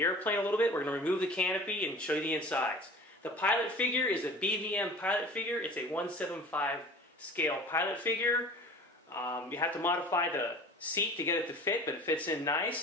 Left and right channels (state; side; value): normal; both; correlation 0.42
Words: airplane a little bit. We're going to remove the canopy and show you the insides. The pilot figure is a BVM pilot figure. It's a 1/75 scale pilot figure. You have to modify the seat to get it to fit, but it fits in